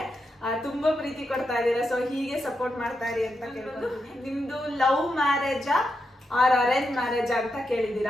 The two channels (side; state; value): both; normal; correlation 0.85